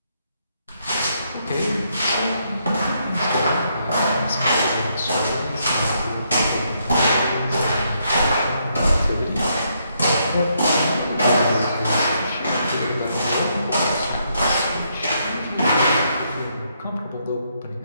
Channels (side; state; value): both; inverted; correlation -0.75